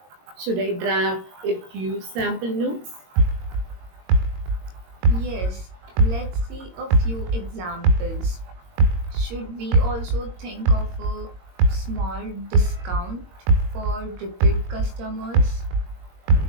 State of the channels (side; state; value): left; late; 22 ms